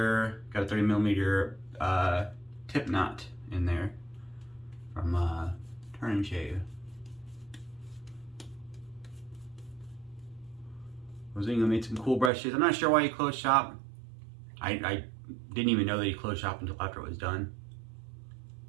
Got a 30 millimeter tip knot in there from Turn and Shave. Mozingo made some cool brushes. I'm not sure why he closed shop. I didn't even know that he closed shop until after it was done.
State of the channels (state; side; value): drops out; left; at 12.3 s